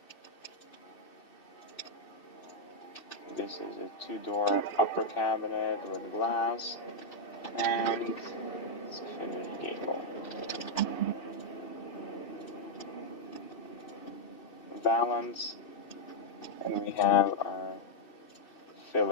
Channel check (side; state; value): right; late; 2.6 ms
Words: This is a 2-door upper cabinet with glass, and it's a finished gable. Balance, and we have our